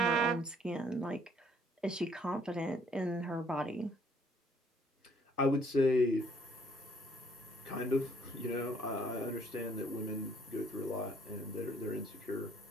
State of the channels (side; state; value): both; normal; correlation 0.63